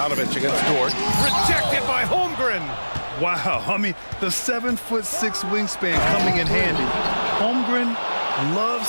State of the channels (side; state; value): both; inverted; correlation -1.00